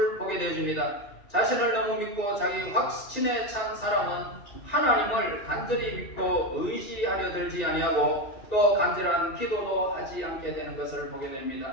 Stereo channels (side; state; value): right; late; 2.7 ms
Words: 보게 되어집니다. 자신을 너무 믿고 자기 확신에 찬 사람은 하나님을 간절히 믿고 의지하려 들지 아니하고 또 간절한 기도도 하지 않게 되는 것을 보게